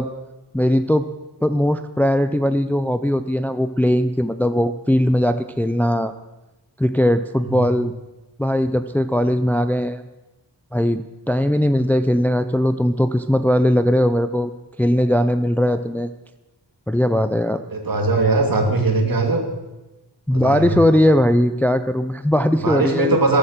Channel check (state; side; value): normal; both; correlation 0.77